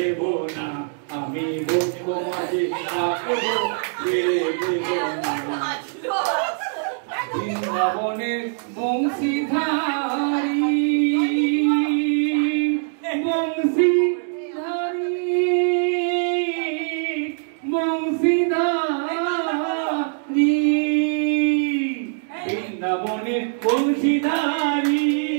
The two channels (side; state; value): left; silent; digital silence